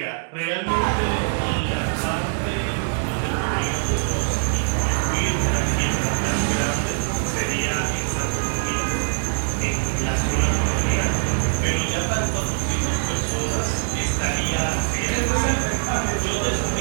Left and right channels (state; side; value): silent; left; digital silence